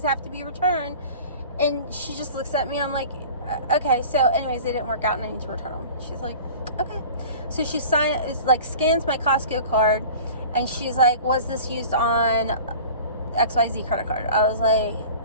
have to be returned. And she just looks at me. I'm like, okay. So anyways, they didn't work out and I need to return them. She's like, okay. So she scans my Costco card, and she's like, was this used on XYZ credit card. I was like,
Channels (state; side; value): inverted; both; correlation -0.41